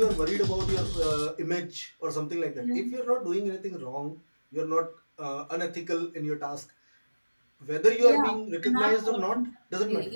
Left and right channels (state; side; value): inverted; both; correlation -1.00